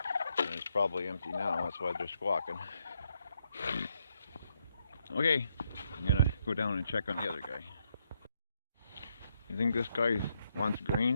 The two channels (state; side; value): inverted; both; correlation -0.78